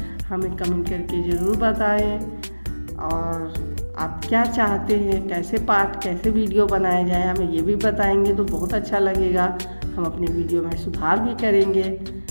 हमें कमेंट करके ज़रूर बताएं। और आप क्या चाहते हैं, कैसे पाठ कैसे वीडियो बनाए जाए, हमें ये भी बताएंगे तो बहुत अच्छा लगेगा। हम अपने वीडियो में सुधार भी करेंगे।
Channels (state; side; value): inverted; both; correlation -1.00